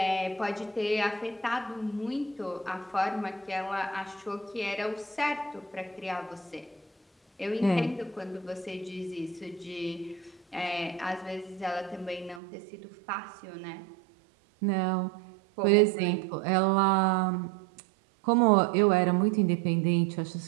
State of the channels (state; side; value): drops out; left; at 12.4 s